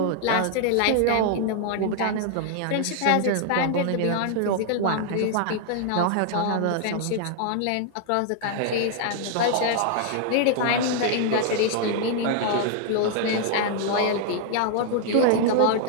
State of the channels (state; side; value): different; both; correlation 0.00